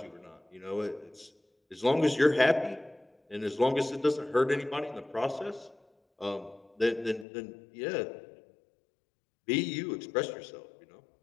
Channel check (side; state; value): right; drops out; at 7.2 s